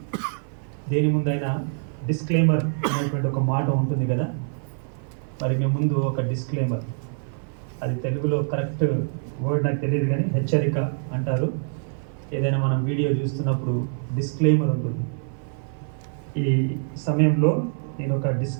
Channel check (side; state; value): left; silent; 56 dB below the other